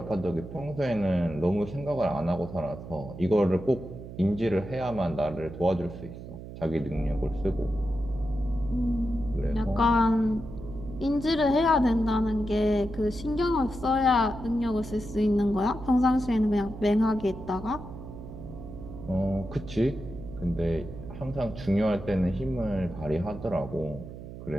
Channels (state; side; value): noise; right; hum, 12 dB below the sound